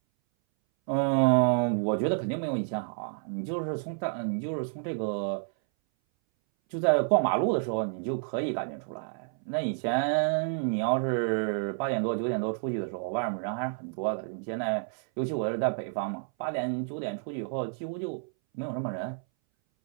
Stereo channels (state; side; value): silent; left; 58 dB below the other